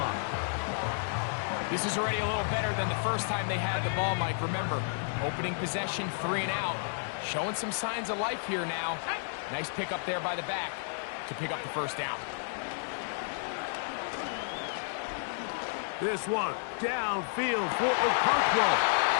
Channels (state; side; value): silent; right; digital silence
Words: This is already a little better than the first time they had the ball, Mike. Remember, opening possession, 3 and out. Showing some signs of life here now. Nice pick up there by the back to pick up the first down. This one downfield for Okonkwo.